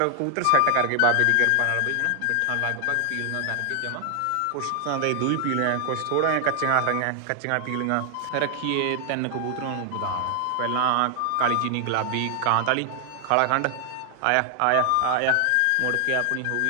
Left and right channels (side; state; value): both; different; correlation 0.00